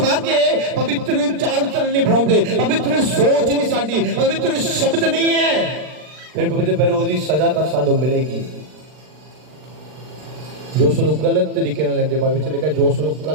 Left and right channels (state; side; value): late; left; 39 ms